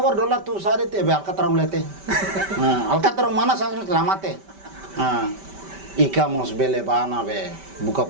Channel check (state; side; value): late; left; 5.1 ms